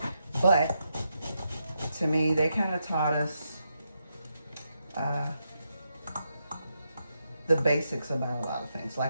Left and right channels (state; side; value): inverted; both; correlation -0.83